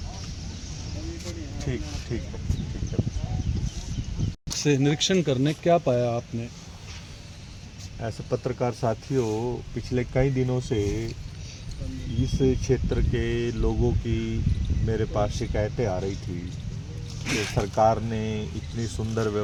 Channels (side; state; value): both; identical; correlation 1.00